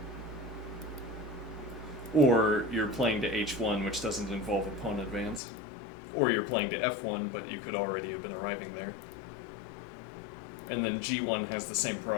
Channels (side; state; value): right; drops out; at 5.4 s